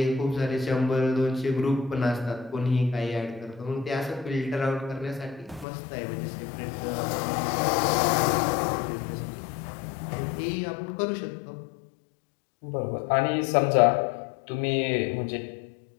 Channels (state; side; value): drops out; right; at 5.7 s